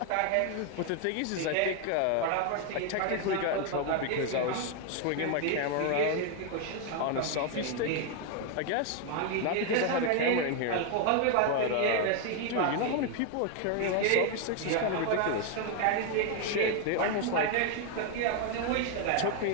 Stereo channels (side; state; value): both; different; correlation 0.01